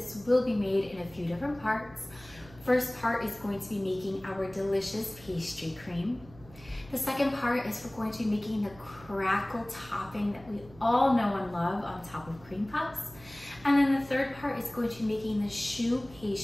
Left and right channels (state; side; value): noise; right; hum, 21 dB below the sound